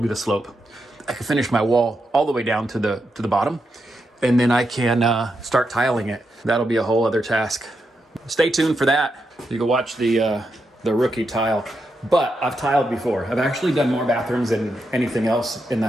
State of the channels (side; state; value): both; normal; correlation 0.84